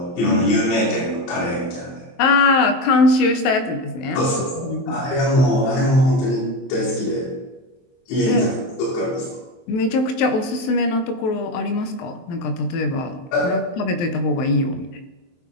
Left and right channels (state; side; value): late; right; 23 ms